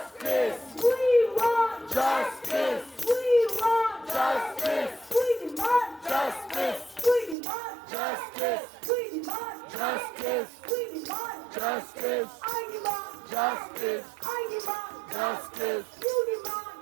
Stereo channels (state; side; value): drops out; left; at 7.4 s